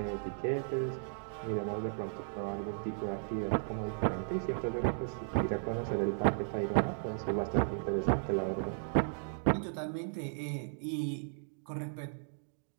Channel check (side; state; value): left; silent; digital silence